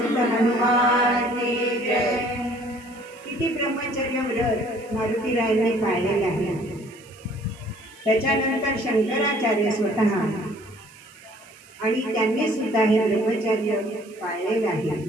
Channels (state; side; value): noise; right; hiss, 26 dB below the sound